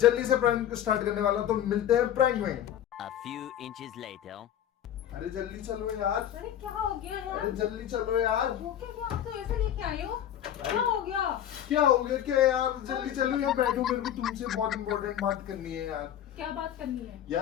से प्रैंक स्टार्ट करने वाला हूं, तो मिलते हैं प्रैंक में। A few inches later. अरे जल्दी चलो यार। अरे क्या हो गया यार? अरे जल्दी चलो यार। वो क्या आप तो ऐसे लेके आए हो? क्या हो गया? क्या हो गया क्या यार? जल्दी चलो, यहाँ बैठो, मेरे को तुमसे बहुत इंपॉर्टेंट बात करनी है यार। क्या बात करनी है?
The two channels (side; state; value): right; quieter; 10.7 dB